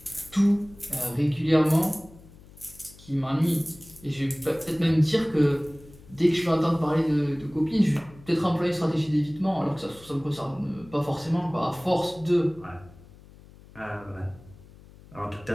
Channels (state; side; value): noise; left; hum, 22 dB below the sound